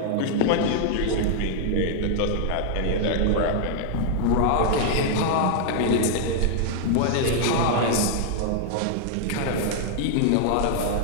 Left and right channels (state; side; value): different; both; correlation -0.01